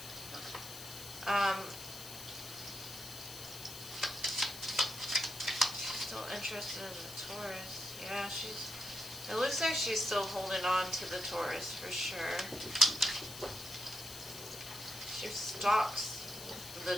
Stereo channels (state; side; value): noise; left; hiss, 11 dB below the sound